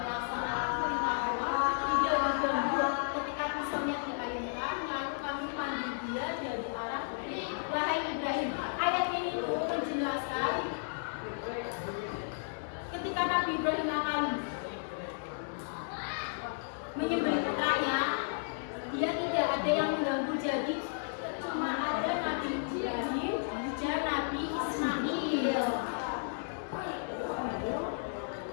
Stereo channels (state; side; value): silent; right; digital silence